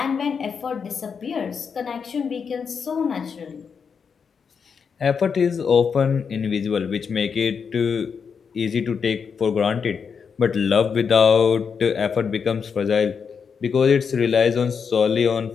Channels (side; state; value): right; quieter; 6.2 dB